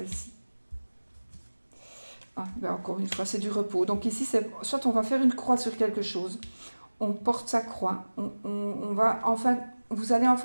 Ah, ben encore une fois, c'est du repos. Donc ici, soit on va faire une croix sur quelque chose, on porte sa croix, on va enfin, vous allez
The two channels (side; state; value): both; inverted; correlation -1.00